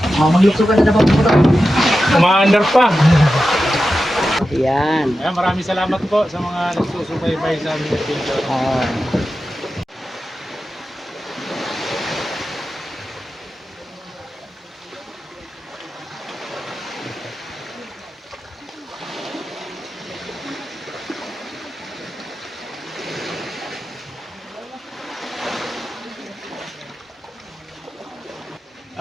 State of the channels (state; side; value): normal; both; correlation 0.92